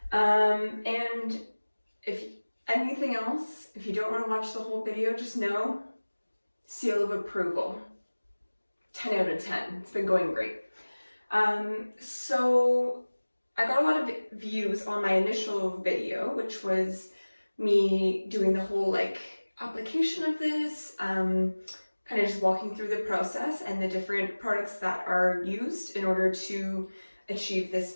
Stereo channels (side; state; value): both; inverted; correlation -1.00